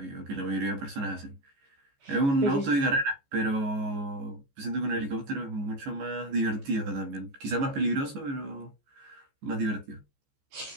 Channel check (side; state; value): left; late; 14 ms